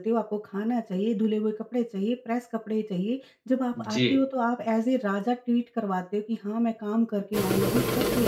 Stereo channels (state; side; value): identical; both; correlation 1.00